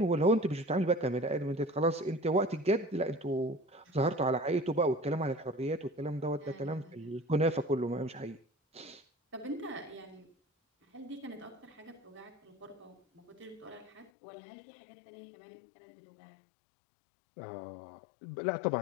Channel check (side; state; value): right; drops out; at 14.1 s